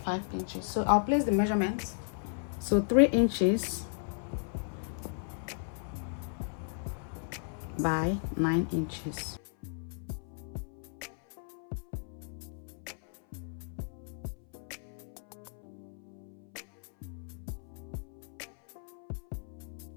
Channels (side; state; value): right; silent; 55 dB below the other